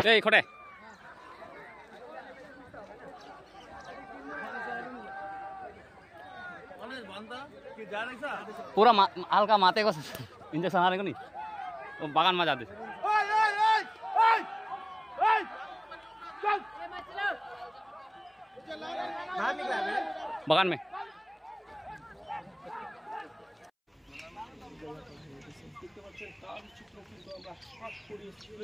এই খটে पूरा हल्का माते को इंजेक्शन आ रहे को नहीं बागान में जाते बागान में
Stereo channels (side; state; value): both; identical; correlation 1.00